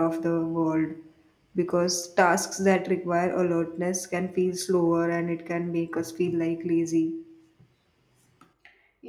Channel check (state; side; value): identical; both; correlation 1.00